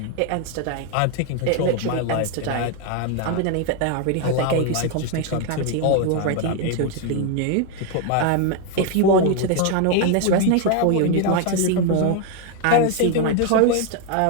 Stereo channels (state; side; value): different; both; correlation 0.01